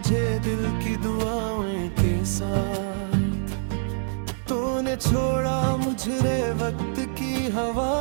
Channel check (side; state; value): left; silent; digital silence